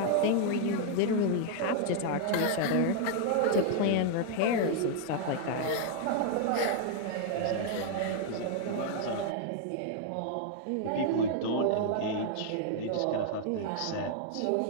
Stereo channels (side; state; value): both; different; correlation 0.00